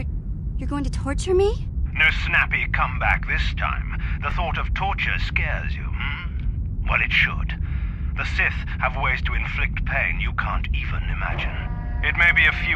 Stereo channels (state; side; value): identical; both; correlation 1.00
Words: going to torture me? No snappy comeback this time. The thought of torture scares you, hmm? Well, it should. The Sith have ways to inflict pain you can't even imagine. It may be a